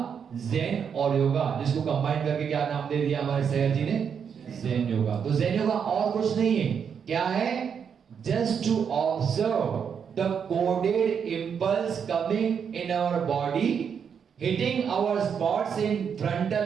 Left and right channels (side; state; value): left; quieter; 7.2 dB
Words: ज़ेन और योगा, जिसको कंबाइन करके क्या नाम दे दिया हमारे सैयद जी ने, ज़ेन योगा। तो ज़ेन योगा और कुछ नहीं है। क्या है? Just to observe the coded impulse coming in our body, hitting our spots in